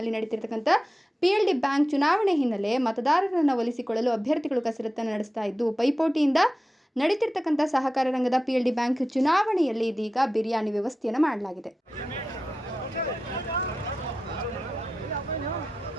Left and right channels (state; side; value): normal; both; correlation 0.93